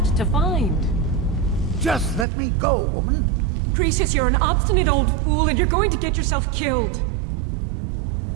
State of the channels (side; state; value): left; drops out; at 2.2 s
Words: to find. Just let me go, woman. Precious, you're an obstinate old fool and you're going to get yourself killed.